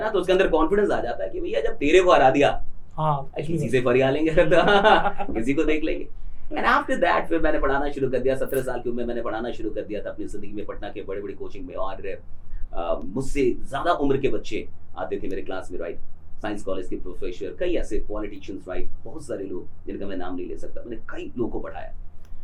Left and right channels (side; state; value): both; identical; correlation 1.00